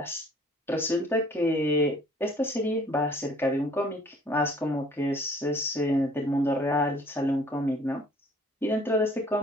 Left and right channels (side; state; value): both; normal; correlation 0.55